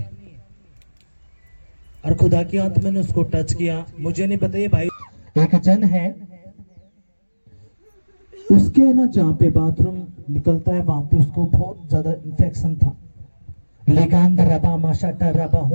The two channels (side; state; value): both; inverted; correlation -1.00